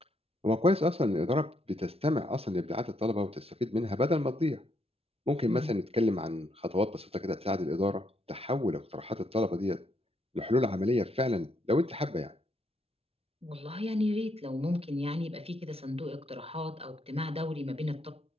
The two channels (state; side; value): late; left; 0.29 ms